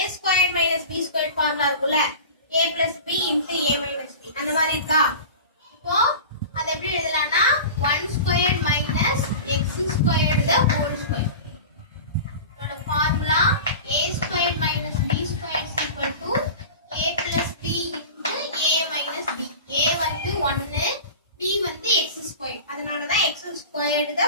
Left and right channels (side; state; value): both; inverted; correlation -0.34